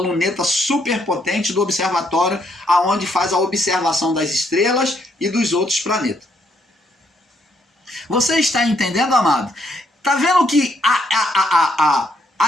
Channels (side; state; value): both; normal; correlation 0.72